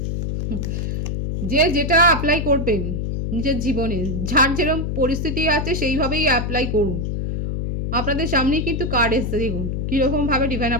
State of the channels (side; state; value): left; noise; hum, 2 dB below the sound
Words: যে যেটা অ্যাপ্লাই করবেন নিজের জীবনে, যার যেরকম পরিস্থিতি আছে সেইভাবেই অ্যাপ্লাই করুন। আপনাদের সামনেই কিন্তু কার্ড এসছে, দেখুন কীরকমভাবে ডিভাইন